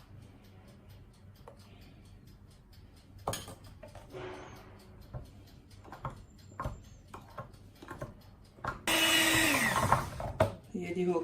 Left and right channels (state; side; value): identical; both; correlation 1.00